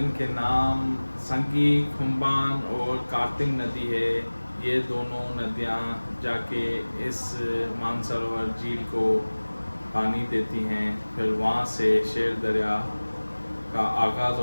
नाम संगी खुम्बान और कार्तिक नदी है, ये दोनों नदियाँ जाके इस मानसरोवर झील को पानी देती हैं। फिर वहाँ से शेर दरिया का आगाज़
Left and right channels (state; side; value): inverted; both; correlation -1.00